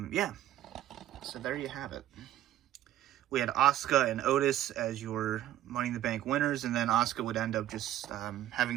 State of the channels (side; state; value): left; quieter; 12.9 dB